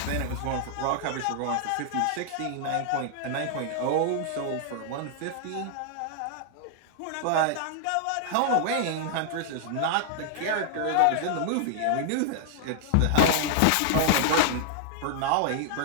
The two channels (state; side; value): different; both; correlation -0.01